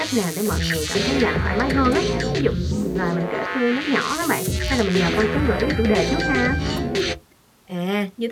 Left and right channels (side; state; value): both; identical; correlation 1.00